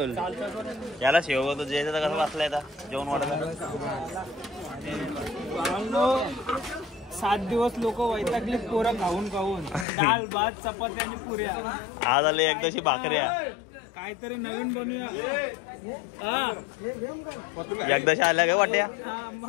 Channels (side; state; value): right; drops out; at 9.9 s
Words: याला सेवक होतो जे कसं वाचलाय आता जेवण वाढत. 7 दिवस लोक वैतागले पोरं खाऊन दाल भात चपाती आणि पुऱ्या. आज आले एकदाशी भाकऱ्या काहीतरी नवीन बनवूया. एकदाशी आल्या काय वाट्या